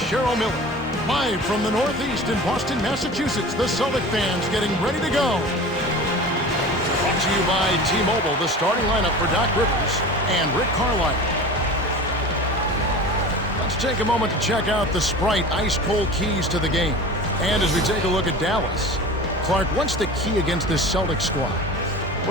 Cheryl Miller. Live from the Northeast in Boston, Massachusetts, the Celtic fans getting ready to go. Brought to you by T-Mobile, the starting lineup for Doc Rivers and Rick Carlisle. Let's take a moment to check out the Sprite ice-cold keys to the game. And as we take a look at Dallas, Clark, what's the key against this Celtic squad?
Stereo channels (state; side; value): normal; both; correlation 0.36